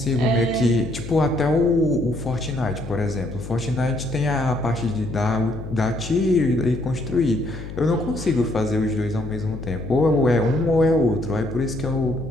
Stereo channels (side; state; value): left; noise; hum, 10 dB below the sound